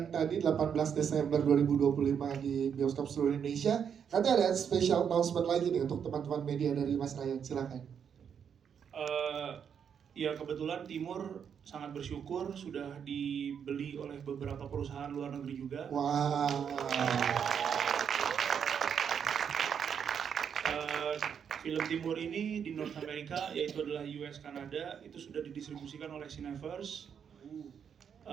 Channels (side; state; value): left; quieter; 7.6 dB